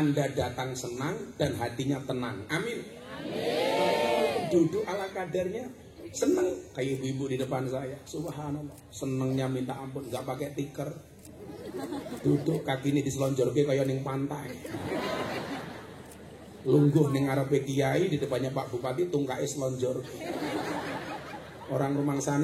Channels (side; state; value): both; identical; correlation 1.00